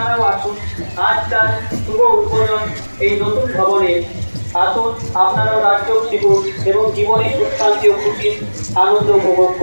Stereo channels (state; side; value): inverted; both; correlation -1.00